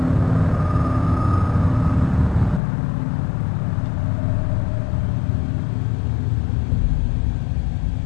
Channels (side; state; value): right; drops out; at 2.6 s